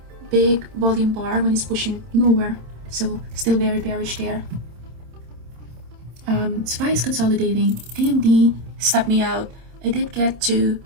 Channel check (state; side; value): late; left; 27 ms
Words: big volume bar when it's pushing lower, so still very bearish there. SPY is consolidating. AMD stopped me out. I did get to